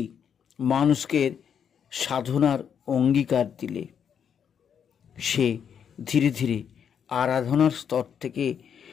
মানুষকে সাধনার অঙ্গীকার দিলে সে ধীরে ধীরে আরাধনার স্তর থেকে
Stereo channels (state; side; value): quieter; right; 7.8 dB